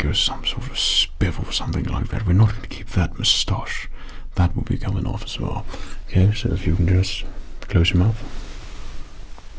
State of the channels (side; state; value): both; identical; correlation 1.00